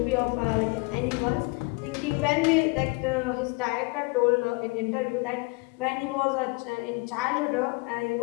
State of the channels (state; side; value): quieter; right; 27.7 dB